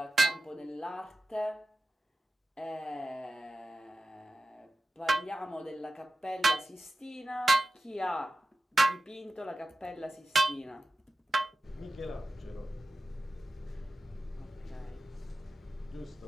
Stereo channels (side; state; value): both; normal; correlation 0.95